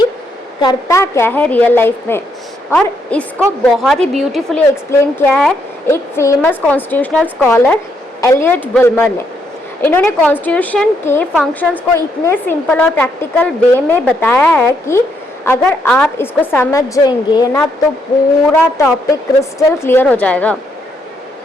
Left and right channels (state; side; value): normal; both; correlation 0.75